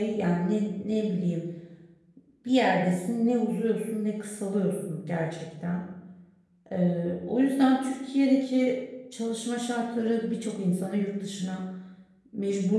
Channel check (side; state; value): both; identical; correlation 1.00